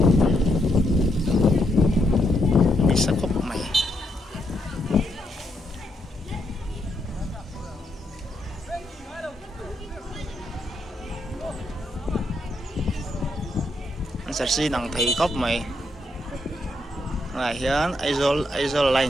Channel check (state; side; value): normal; both; correlation 0.78